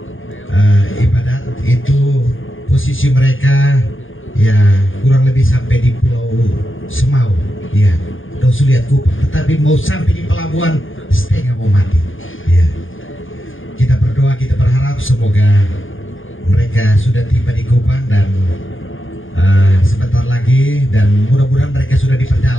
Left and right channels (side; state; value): right; late; 0.58 ms